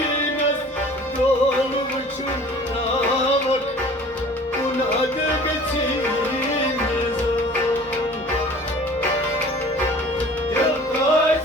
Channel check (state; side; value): normal; both; correlation 0.47